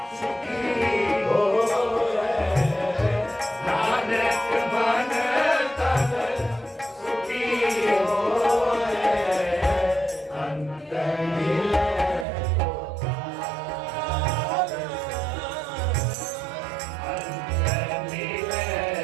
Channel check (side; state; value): left; drops out; at 12.2 s